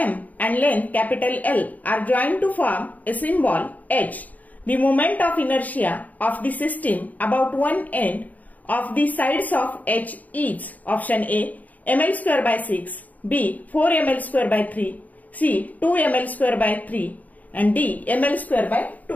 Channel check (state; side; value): late; right; 0.076 ms